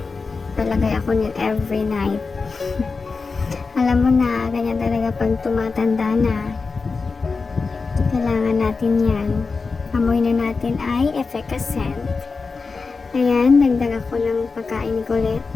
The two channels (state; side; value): quieter; right; 4.4 dB